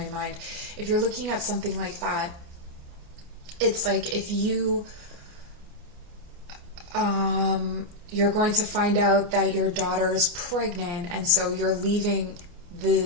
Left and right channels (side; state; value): left; late; 28 ms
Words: mind. If you're looking at something like that, it's like if you You're going to find out that your daughter is pregnant, and so you're leaving